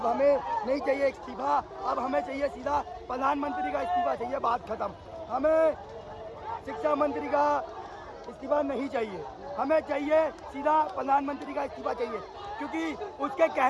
हमें नहीं चाहिए इस्तीफा, अब हमें चाहिए सीधा प्रधानमंत्री का इस्तीफा चाहिए, बात खत्म। हमें शिक्षा मंत्री का इस्तीफा नहीं चाहिए, हमें चाहिए सीधा प्रधानमंत्री का इस्तीफा चाहिए, क्योंकि उसके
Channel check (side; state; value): both; identical; correlation 1.00